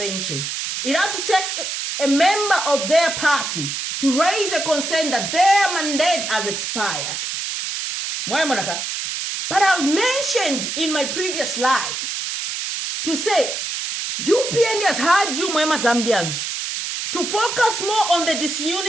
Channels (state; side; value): noise; right; hiss, 4 dB below the sound